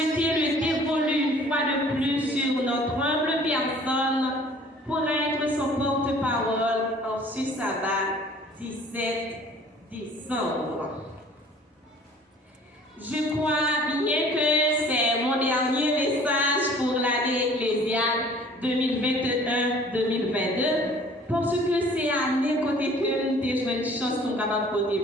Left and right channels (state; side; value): normal; both; correlation 0.51